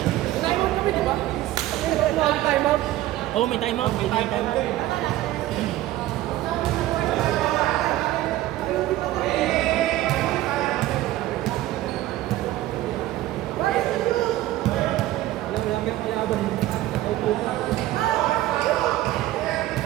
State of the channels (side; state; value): left; quieter; 15.3 dB